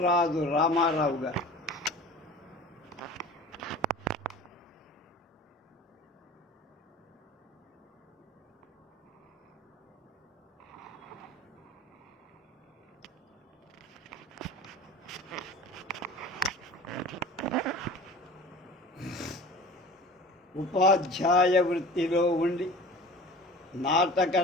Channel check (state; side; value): normal; both; correlation 0.40